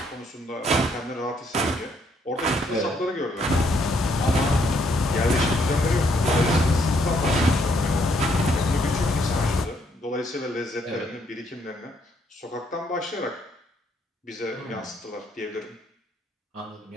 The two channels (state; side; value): normal; both; correlation 0.71